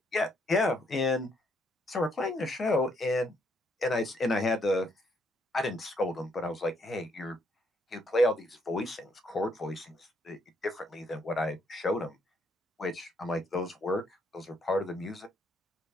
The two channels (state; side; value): normal; both; correlation 0.71